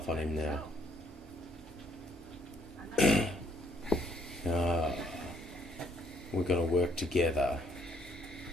on him now. We're going to work together.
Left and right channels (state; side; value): normal; both; correlation 0.67